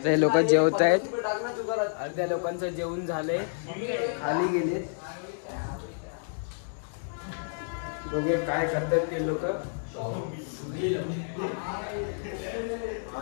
ते लोक जेवत आहेत. अर्ध्या लोकांचं जेवण झालंय, खाली गेलेत. बघूया काय करतात ते लोक.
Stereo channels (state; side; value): silent; right; digital silence